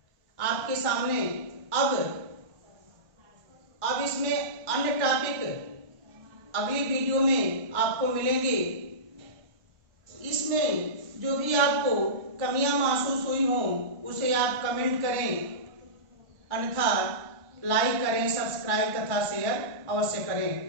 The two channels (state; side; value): late; left; 1.1 ms